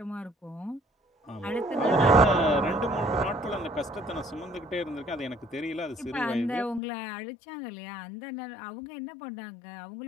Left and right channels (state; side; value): drops out; right; at 6.8 s